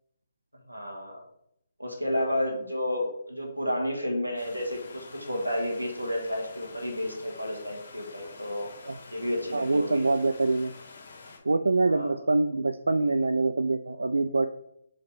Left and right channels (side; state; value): both; inverted; correlation -0.92